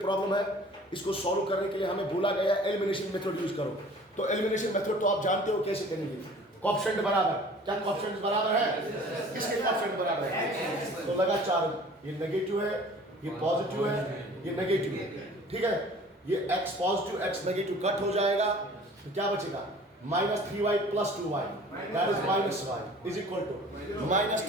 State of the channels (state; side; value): normal; both; correlation 0.48